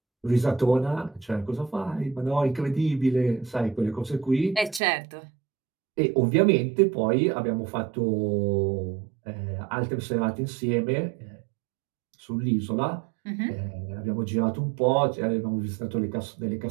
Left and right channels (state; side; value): drops out; left; at 4.8 s